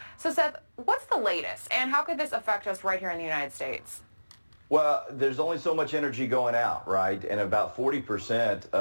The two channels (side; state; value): both; inverted; correlation -1.00